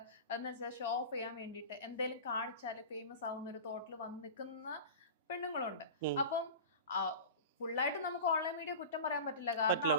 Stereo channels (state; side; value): inverted; both; correlation -0.32